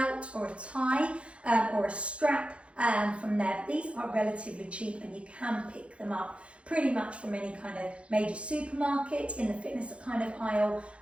or a tie or a strap from there. These are relatively cheap and you can pick them up pretty much from any kind of major supermarket, in the fitness kind of aisle,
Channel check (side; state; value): left; late; 0.060 ms